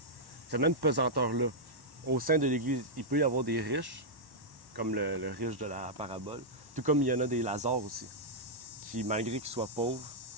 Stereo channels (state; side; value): late; left; 1.1 ms